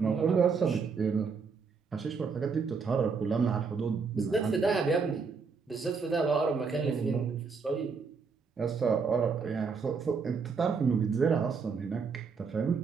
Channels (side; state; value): left; quieter; 5.2 dB